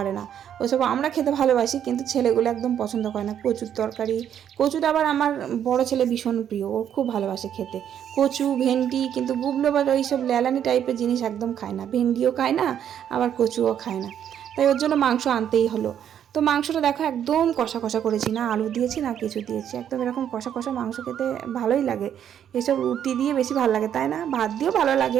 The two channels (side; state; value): left; quieter; 9.5 dB